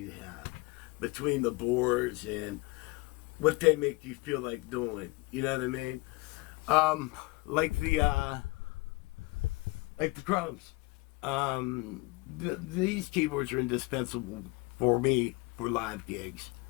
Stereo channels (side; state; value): right; quieter; 23.8 dB